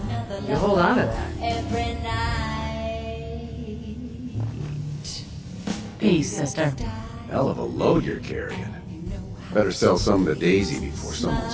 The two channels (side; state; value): both; identical; correlation 1.00